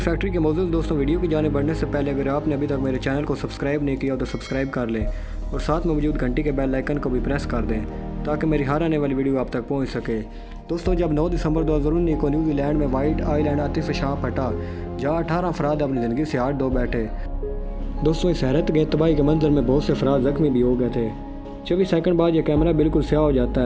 फैक्ट्री के मौजूद दोस्तों, वीडियो की जाने बढ़ने से पहले अगर आपने अभी तक मेरे चैनल को सब्सक्राइब नहीं किया तो सब्सक्राइब कर लें और साथ में मौजूद घंटी के बेल आइकन को भी प्रेस कर दें ताकि मेरी हर आने वाली वीडियो आप तक पहुँच सके। दोस्तों जब 9 दिसंबर 2019 को न्यूजीलैंड में वाइट आइलैंड आतिश फिशान फटा जहाँ 18 अफराद अपनी ज़िंदगी से हाथ धो बैठे। दोस्तों इस हैरत के तबाही के मंजर में बहुत से अफराद जख्मी भी हो गए थे। 24 सेकंड बाद यह कैमरा बिल्कुल स्याह हो जाता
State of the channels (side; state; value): both; identical; correlation 1.00